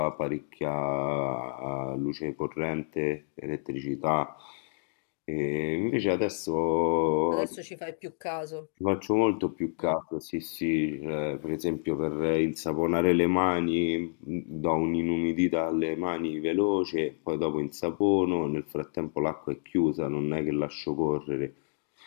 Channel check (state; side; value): silent; right; digital silence